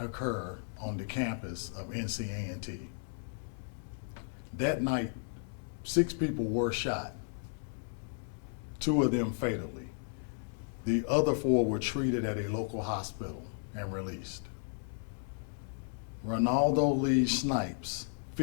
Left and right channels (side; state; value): right; silent; digital silence